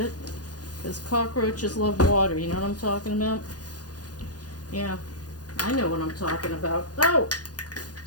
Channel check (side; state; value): right; late; 0.69 ms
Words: Because cockroaches love water, you know what I'm talking about? Yeah, I know what I'm talking about. Oh!